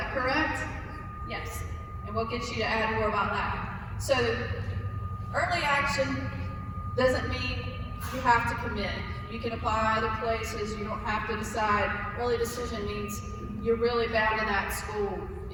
correct? Yes. And we'll get you to add more about that. So, early action doesn't mean you have to commit. You can apply other places. You don't have to decide. Early decision means you're really bound to that school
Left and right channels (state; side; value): identical; both; correlation 1.00